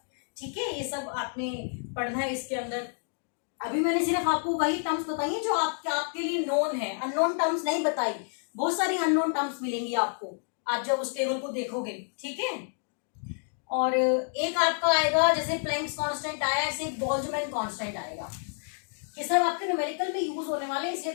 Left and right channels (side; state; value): right; silent; 58 dB below the other